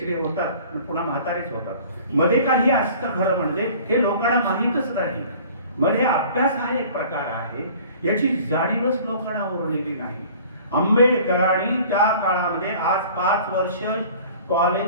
होतात, पुन्हा म्हातारेच होतात. मध्ये काही असतं खरं म्हणजे हे लोकांना माहीतच नाही. मध्ये अभ्यास हा एक प्रकार आहे, याची जाणीवच लोकांना उरलेली नाही. आंबेडकरांनी त्या काळामध्ये आज 5 वर्ष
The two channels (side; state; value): both; inverted; correlation -0.48